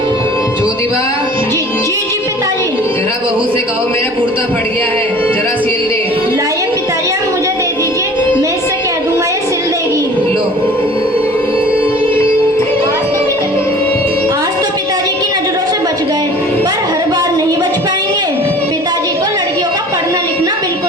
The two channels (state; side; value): normal; both; correlation 0.46